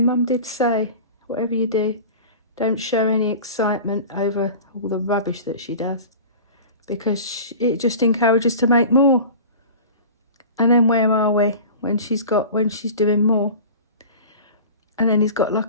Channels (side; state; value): both; inverted; correlation -0.37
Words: did say, whatever you do, don't show any excitement over all the rubbish that she does, because it just encourages to make more. And then where are we when she's doing more? And then he's got